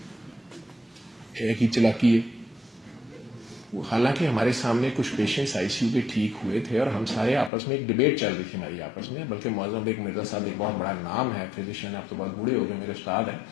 ایک ہی چلاکی ہے. حالانکہ ہمارے سامنے کچھ پیشنٹس آئی سی یو کے ٹھیک ہوئے تھے اور ہم سارے آپس میں ایک ڈبیٹ چل رہی تھی ہماری آپس میں، بلکہ معظم بیگ مرزا صاحب ایک بہت بڑا نام ہے فزیشین، اب تو بہت بوڑھے ہو گئے، میرے استاد ہیں،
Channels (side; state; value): right; drops out; at 7.5 s